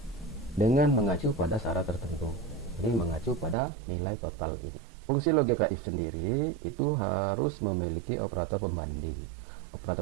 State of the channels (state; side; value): drops out; left; at 3.6 s